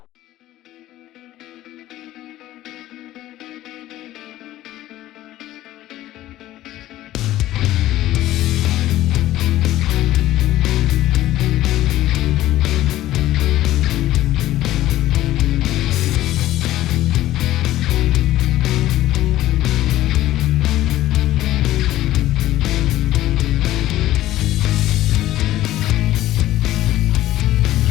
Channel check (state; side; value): quieter; right; 14.7 dB